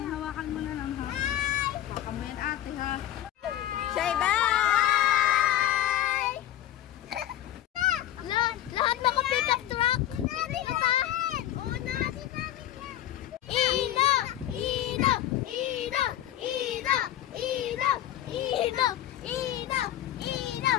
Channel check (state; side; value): quieter; right; 12.6 dB